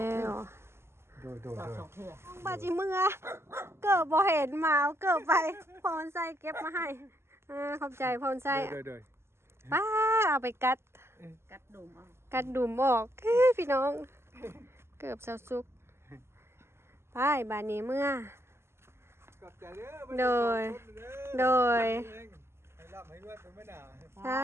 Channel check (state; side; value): late; left; 0.12 ms